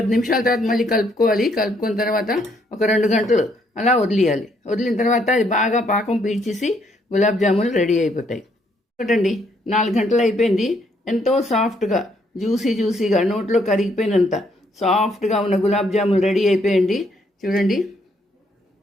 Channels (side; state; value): both; normal; correlation 0.70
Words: నిమిషాల తర్వాత మళ్ళీ కలుపుకోవాలి. కలుపుకున్న తర్వాత ఒక 2 గంటలు అలా వదిలేయాలి. వదిలిన తర్వాత అది బాగా పాకం పీల్చేసి గులాబ్ జాములు రెడీ అయిపోతాయి. ఒకటండి 4 గంటలు అయిపోయింది. ఎంతో సాఫ్ట్గా జ్యూసీగా నోట్లో కరిగిపోయినంత సాఫ్ట్గా ఉన్న గులాబ్ జాములు రెడీ అయిపోయండి. చూడండి,